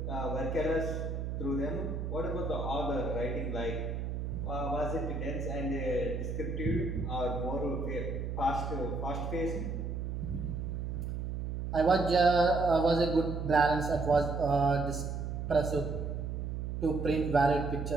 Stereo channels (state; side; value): noise; right; hum, 3 dB below the sound